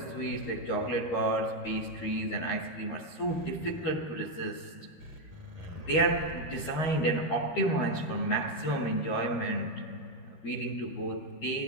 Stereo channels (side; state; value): right; late; 13 ms